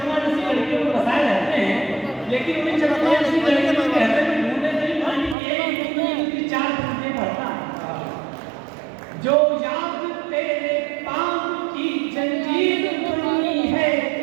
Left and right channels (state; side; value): drops out; left; at 5.4 s